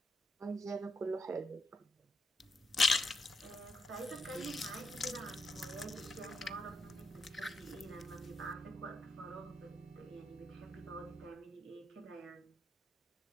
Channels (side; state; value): both; normal; correlation 0.82